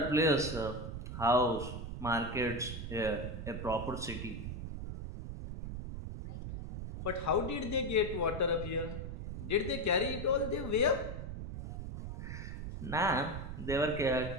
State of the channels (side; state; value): right; noise; rumble, 6 dB below the sound